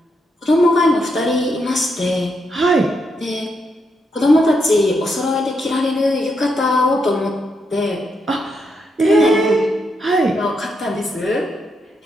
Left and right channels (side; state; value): both; normal; correlation 0.80